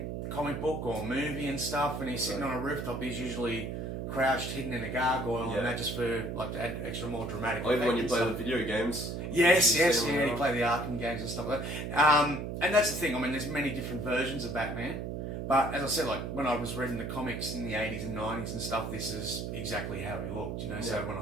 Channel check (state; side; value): noise; right; hum, 4 dB below the sound